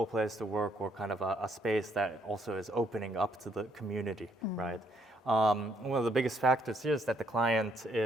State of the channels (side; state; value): both; normal; correlation 0.70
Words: place to work, or kind of a space that also is opening up to the community, right? One of the biggest factors here is that the client